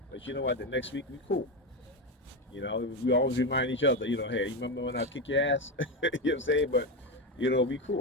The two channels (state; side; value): normal; both; correlation 0.14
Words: but you know what? The next week we cool. You know, we always remind each other, you know, hey, you remember when I kick your ass? You know what I'm saying? But you know, we